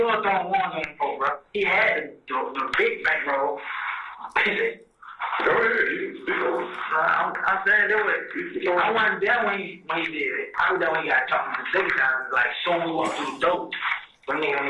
was throwing ones on them folk, bro. He had the big bankroll. Go ahead, you speak on it. I'm saying that was. I wasn't there when he did it. I was there when he got talking the second time. Like, soon we walked through the door. When nigga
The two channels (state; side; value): identical; both; correlation 1.00